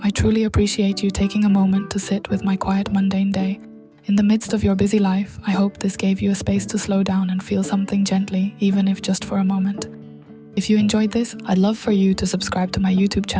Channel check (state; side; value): identical; both; correlation 1.00